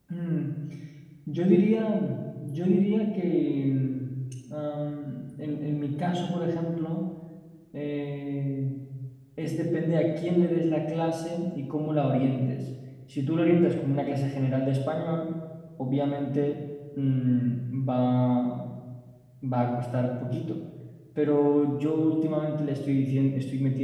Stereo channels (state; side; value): identical; both; correlation 1.00